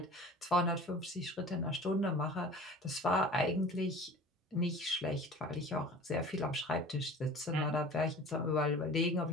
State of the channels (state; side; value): normal; both; correlation 0.41